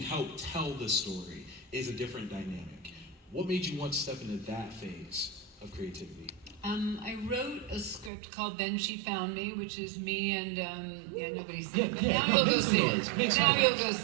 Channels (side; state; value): left; drops out; at 8.1 s